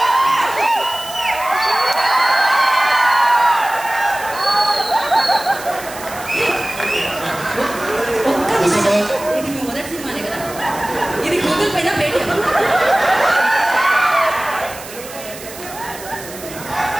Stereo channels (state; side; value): noise; right; hiss, 14 dB below the sound